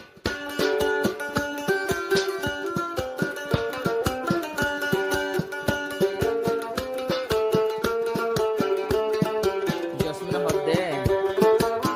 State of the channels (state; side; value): identical; both; correlation 1.00